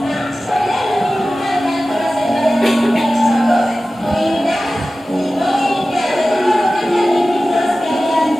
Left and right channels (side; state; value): both; normal; correlation 0.95